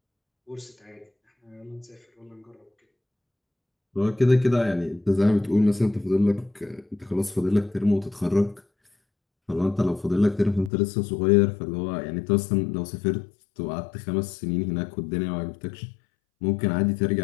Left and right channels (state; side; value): drops out; right; at 10.7 s